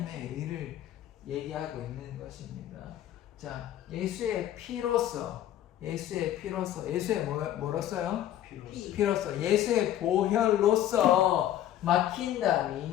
의를 얘기하고 있는 것입니다. 자, 예수의 피로써, 예수의 뭐로써요? 피로써, 예수의 보혈로써 막힌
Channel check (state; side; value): quieter; right; 12.1 dB